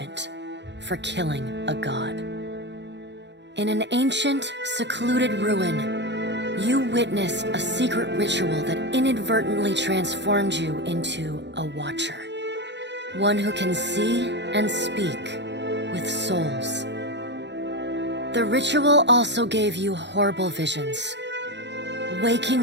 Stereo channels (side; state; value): left; late; 0.51 ms